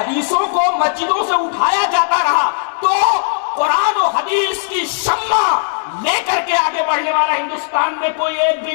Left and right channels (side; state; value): right; silent; digital silence